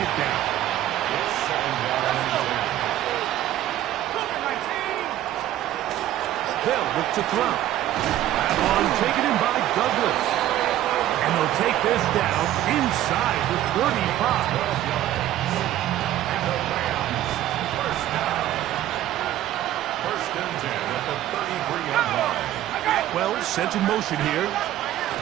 down. It's 2nd down and 10. They'll look to throw. That one taken in by Douglas. And they'll take this down inside the 35. And the Rams, first down. First and 10 at the 33-yard line. Well, sent in motion here.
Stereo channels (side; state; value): left; quieter; 13.1 dB